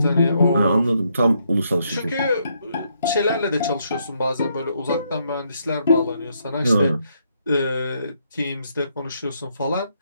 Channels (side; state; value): both; inverted; correlation -0.75